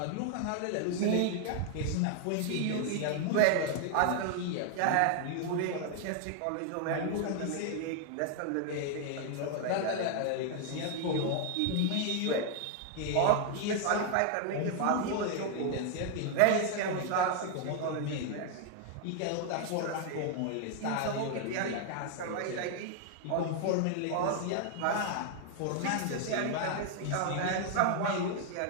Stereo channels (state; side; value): different; both; correlation 0.00